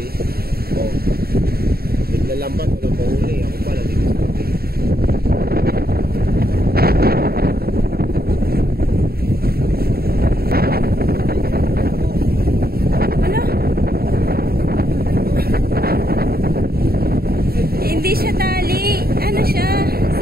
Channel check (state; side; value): late; left; 0.45 ms